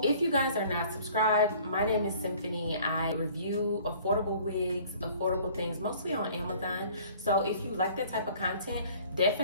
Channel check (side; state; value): both; inverted; correlation -0.52